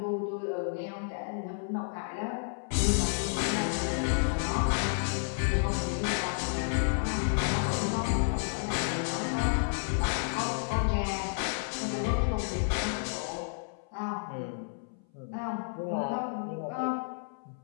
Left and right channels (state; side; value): silent; right; 57 dB below the other